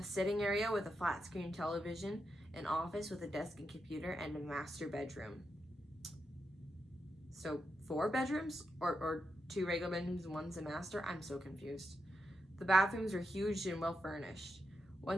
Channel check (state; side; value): normal; both; correlation 0.85